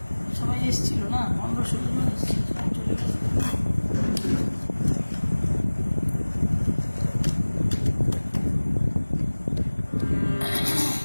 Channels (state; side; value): inverted; both; correlation -1.00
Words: সবাই এসেছিল না, 15-16 জন এসেছিল, সবাই চলে গেছে।